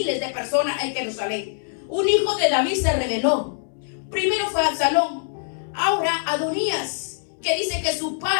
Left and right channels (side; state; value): right; silent; 63 dB below the other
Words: de personas en Jerusalén. Un hijo de David se rebeló. Primero fue Absalón, ahora Adonías, que dice que su